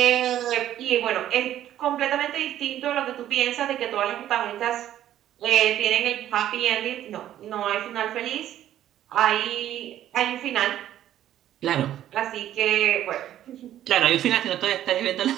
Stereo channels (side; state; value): left; quieter; 12.0 dB